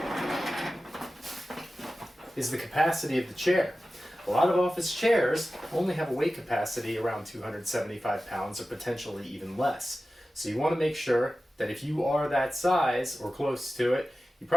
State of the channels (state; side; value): normal; both; correlation 0.95